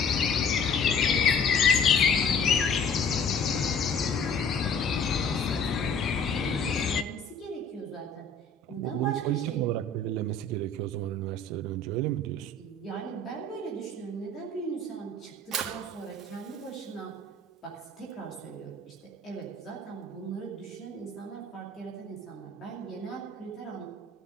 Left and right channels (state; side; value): quieter; right; 3.1 dB